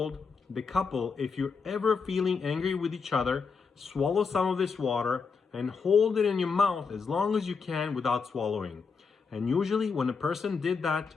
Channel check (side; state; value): right; quieter; 5.3 dB